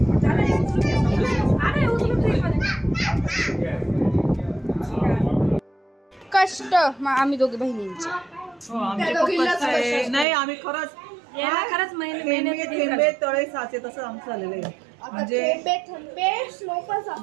कष्ट आम्ही दोघी बहिणींचे. नाही आम्ही खरंच महिने तळे साचे तसं आमचं झालेलं आहे. म्हणजे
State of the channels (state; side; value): drops out; left; at 10.2 s